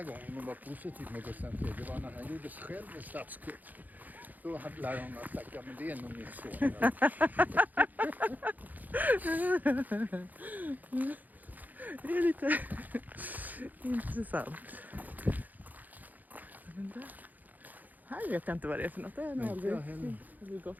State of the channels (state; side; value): late; left; 0.082 ms